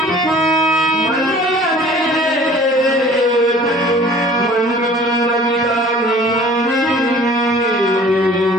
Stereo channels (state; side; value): normal; both; correlation 0.49